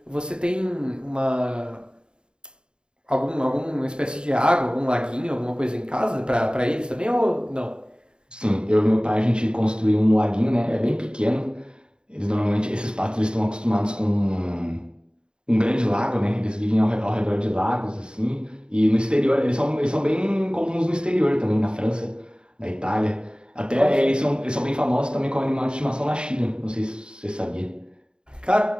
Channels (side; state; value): left; late; 0.050 ms